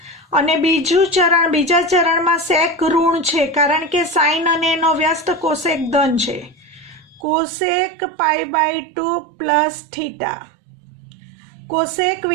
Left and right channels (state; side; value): drops out; left; at 7.2 s